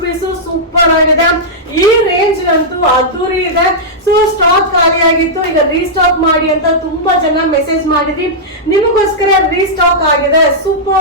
ಸೂಪರ್ ಆಗಿದೆ. ಈ ರೇಂಜ್ ಅಂತೂ ಅದ್ದೂರಿ ಇದೆ. ಸೊ ಸ್ಟಾಕ್ ಖಾಲಿ ಆಗಿತ್ತು, ಈಗ ರೀಸ್ಟಾಕ್ ಮಾಡಿ ಅಂತ ತುಂಬಾ ಜನ ಮೆಸೇಜ್ ಮಾಡಿದ್ರಿ. ನಿಮಗೋಸ್ಕರ ರೀಸ್ಟಾಕ್ ಆಗಿದೆ.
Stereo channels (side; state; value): both; normal; correlation -0.10